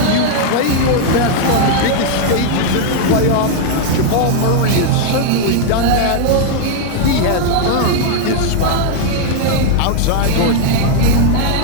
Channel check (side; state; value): both; different; correlation 0.00